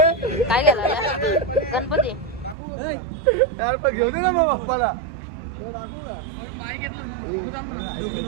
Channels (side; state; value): left; drops out; at 2.6 s